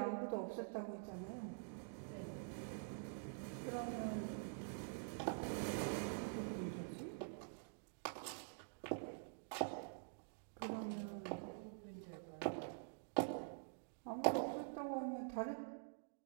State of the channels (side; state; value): left; silent; digital silence